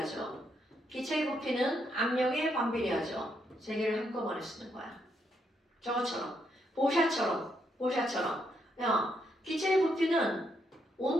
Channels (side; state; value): both; normal; correlation 0.77